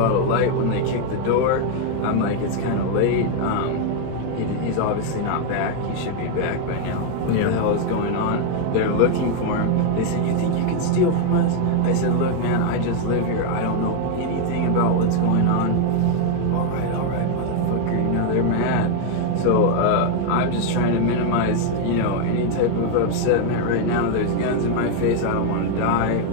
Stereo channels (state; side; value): different; both; correlation 0.00